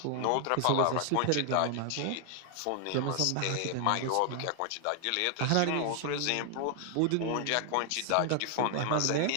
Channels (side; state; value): both; different; correlation 0.00